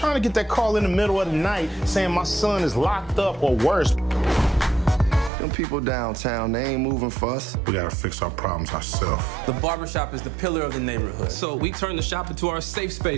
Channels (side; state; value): left; drops out; at 5.3 s